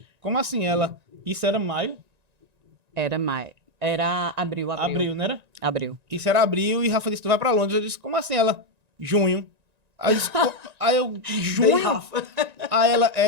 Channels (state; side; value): late; left; 1.9 ms